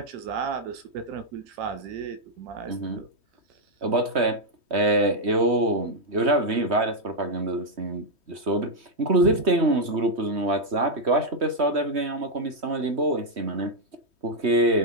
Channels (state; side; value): late; left; 3.2 ms